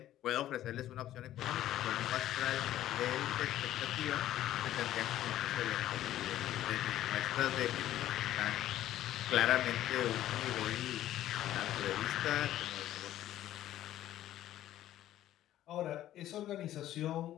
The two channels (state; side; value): quieter; right; 13.0 dB